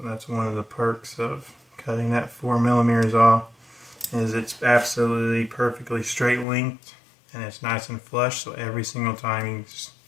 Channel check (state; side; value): drops out; right; at 6.5 s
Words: that's one of the perks of cutting that 4mm off, is it's absolutely perfectly straight linked and it's nice and flush, so every single time you just